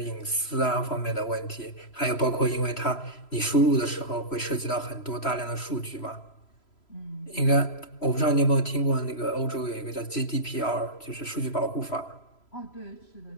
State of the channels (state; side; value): late; right; 3.0 ms